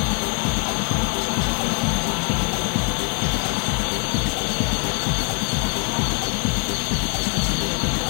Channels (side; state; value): right; quieter; 34.2 dB